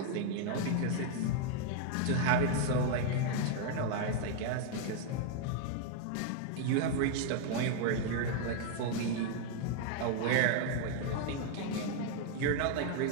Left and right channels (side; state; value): both; different; correlation 0.00